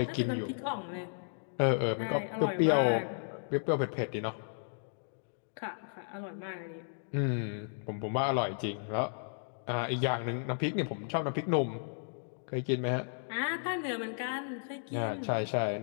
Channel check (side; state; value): right; silent; digital silence